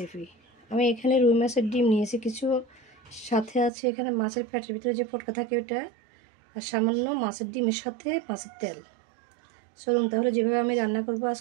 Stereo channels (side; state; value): left; drops out; at 3.7 s